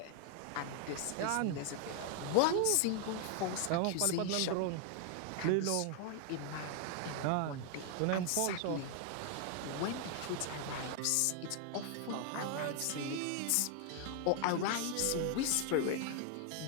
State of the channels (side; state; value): both; different; correlation 0.00